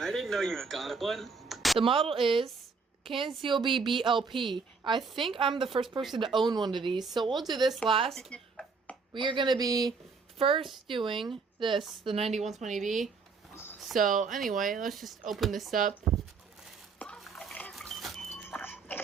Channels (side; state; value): left; quieter; 4.8 dB